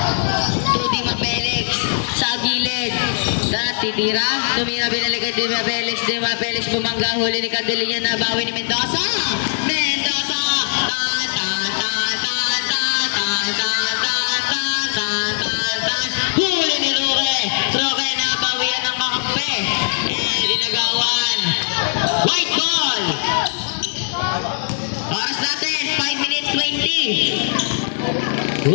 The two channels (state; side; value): silent; right; digital silence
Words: To Dema Felix. Sa gilid. Titira. Tumira binalikan Dema Felix. Dema Felix bumangga. Huli ni Candelinya. Nabawi ni Mendoza. Mendoza. Huli ni Roque. Roque nabawian ng kakampi. Dinagawan. White ball. Oras natin. 5 minutes 20.